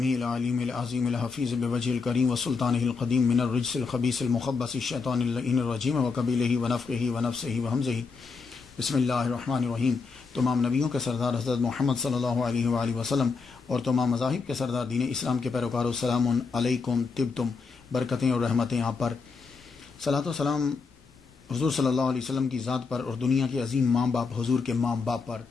العلیم العظیم الحفیظ بوجہ الکریم وسلطانہ القدیم من الرجس الخبیث المخبث الشیطان اللعین الرجیم وقبیلہ ونفخہ ونفسہ وہمزہ۔ بسم اللہ الرحمن الرحیم۔ تمام نبیوں کے سردار حضرت محمد صلی اللہ علیہ وآلہ وسلم اور تمام مذاہب کے سردار دین اسلام کے پیروکاروں، السلام علیکم، طبتم، برکتیں اور رحمتیں آپ پر۔ صلاۃ و سلام حضور صلی اللہ علیہ وسلم کی ذات پر اور دنیا کے عظیم ماں باپ حضور کے ماں باپ پر۔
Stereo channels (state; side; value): quieter; right; 4.8 dB